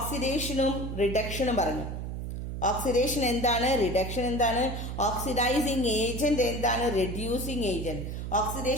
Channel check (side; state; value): right; noise; hum, 5 dB below the sound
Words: റിഡക്ഷനും പറഞ്ഞു. ഓക്സിഡേഷൻ എന്താണ്? റിഡക്ഷൻ എന്താണ്? ഓക്സിഡൈസിങ് ഏജന്റ് എന്താണ്? Reducing agent.